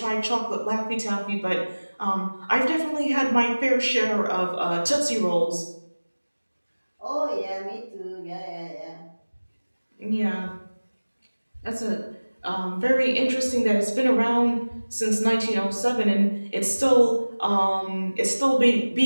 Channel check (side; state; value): both; inverted; correlation -1.00